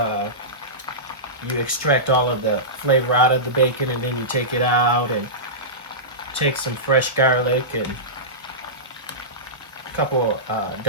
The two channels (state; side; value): normal; both; correlation -0.18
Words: you extract all of the flavor out of the bacon, and then you take it out and take some fresh garlic and a couple